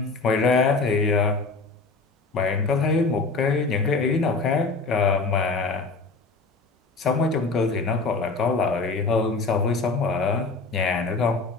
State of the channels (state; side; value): quieter; right; 3.9 dB